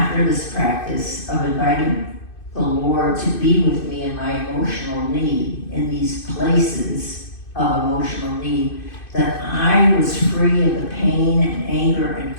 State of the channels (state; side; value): late; right; 2.6 ms